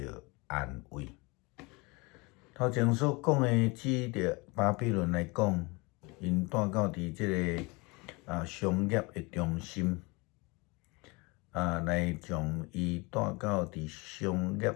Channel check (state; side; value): quieter; right; 26.6 dB